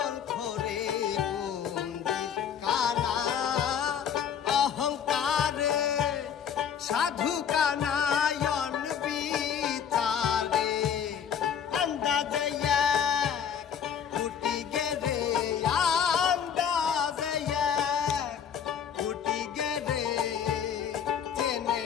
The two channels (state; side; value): quieter; right; 8.0 dB